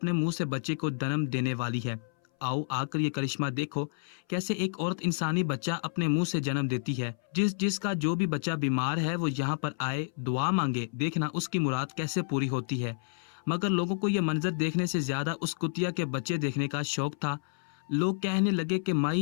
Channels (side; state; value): right; silent; 58 dB below the other